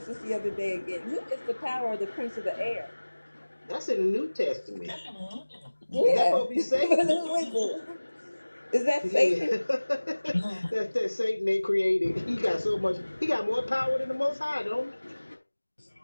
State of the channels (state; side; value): inverted; both; correlation -1.00